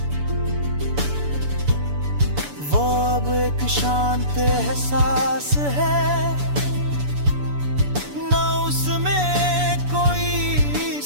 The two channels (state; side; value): late; left; 6.9 ms